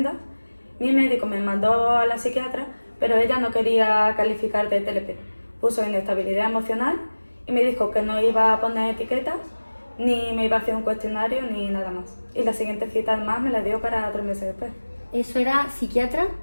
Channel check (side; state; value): both; inverted; correlation -1.00